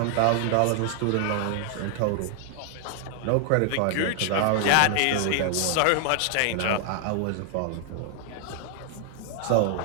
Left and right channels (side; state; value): both; different; correlation 0.00